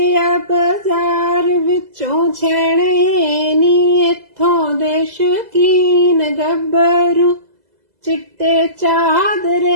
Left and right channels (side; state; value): left; late; 2.0 ms